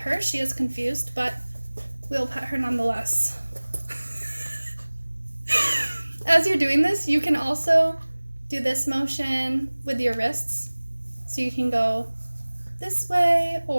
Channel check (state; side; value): inverted; both; correlation -1.00